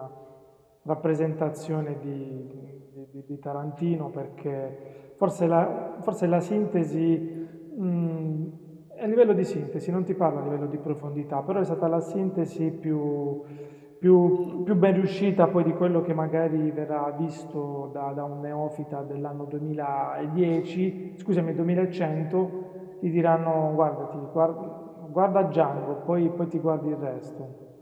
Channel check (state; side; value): identical; both; correlation 1.00